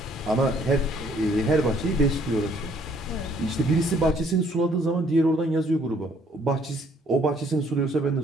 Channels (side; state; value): both; normal; correlation 0.63